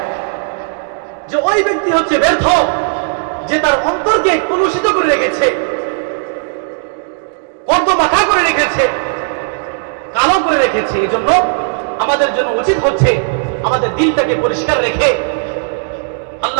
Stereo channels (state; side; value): silent; left; digital silence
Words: যে ওই ব্যক্তি হচ্ছে ব্যর্থ যে তার অন্তরকে কলুষিত করে রেখেছে, কর্দমাখা করে রেখেছে, কালো করে রেখেছে। এই জন্য আমাদের জন্য উচিত হচ্ছে আমাদের দিলটাকে পরিষ্কার রেখে